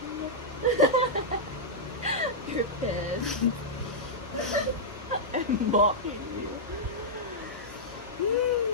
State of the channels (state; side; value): normal; both; correlation -0.09